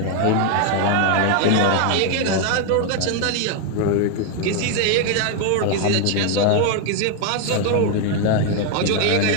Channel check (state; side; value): different; both; correlation 0.01